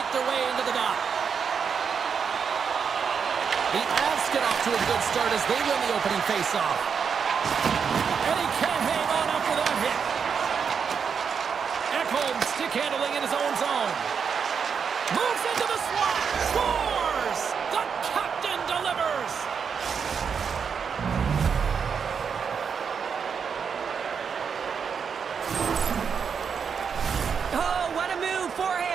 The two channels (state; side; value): quieter; left; 6.5 dB